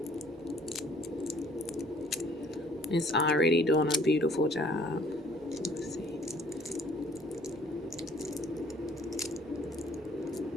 It's already doing a beautiful job. Let's see.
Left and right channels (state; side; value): normal; both; correlation 0.58